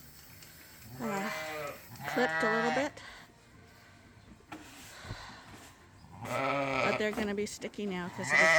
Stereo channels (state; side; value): identical; both; correlation 1.00